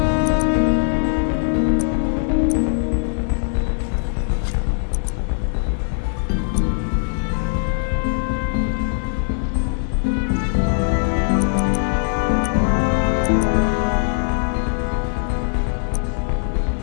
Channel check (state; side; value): silent; right; digital silence